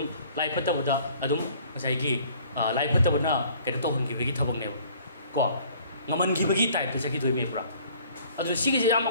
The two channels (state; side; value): inverted; both; correlation -0.54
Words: लाइफत्तबदा अदुम मसाइगी लाइफत्तबना कैनो तौहनगिबगी थबकनेबो को ngमनगिबगी टाइप जगी दोइमे पुरा अदु सिगिजे याम